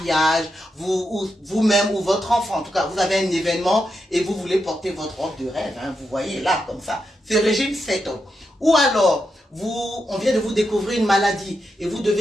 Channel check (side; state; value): both; normal; correlation 0.85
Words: vous-même ou votre enfant, en tout cas, vous avez un événement et vous voulez porter votre robe de rêve. Hein, vous voyez là, comme ça. Ce régime, c'est top. Ou alors, on vient de vous découvrir une maladie et vous